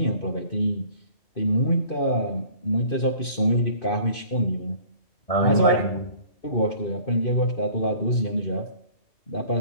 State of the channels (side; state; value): right; late; 2.5 ms